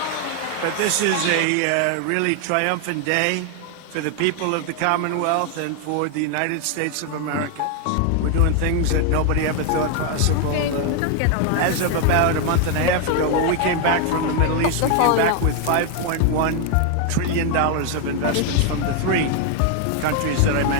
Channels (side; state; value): both; different; correlation 0.01